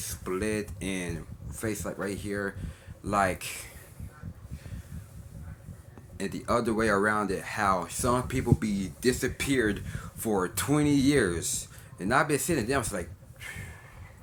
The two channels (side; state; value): both; identical; correlation 1.00